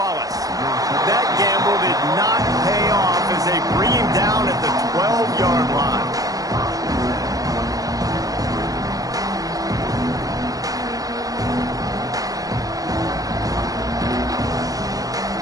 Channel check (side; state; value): left; late; 0.18 ms